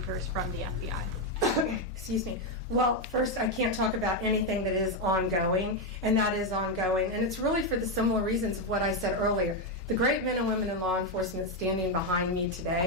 from the FBI? Excuse me. Well, first, I can't talk about anything that is ongoing, and that is ongoing. And it's really for the similar reasons of what I said earlier. The great men and women in law enforcement standing behind me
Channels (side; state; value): both; normal; correlation 0.05